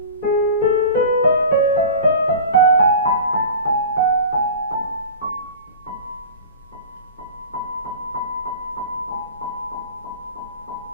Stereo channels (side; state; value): both; inverted; correlation -0.36